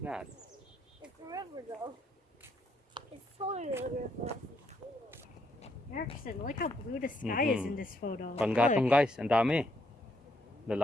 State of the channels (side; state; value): both; normal; correlation 0.74